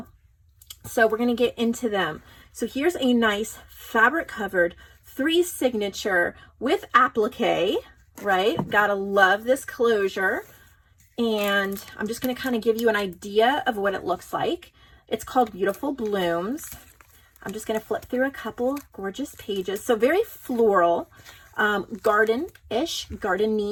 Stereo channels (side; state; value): both; identical; correlation 1.00